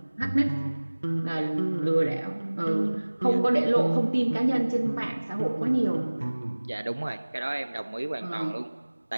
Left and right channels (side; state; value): both; inverted; correlation -1.00